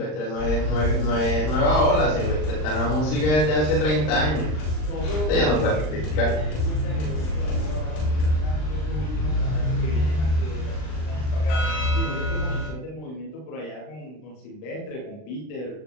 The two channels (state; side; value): late; right; 39 ms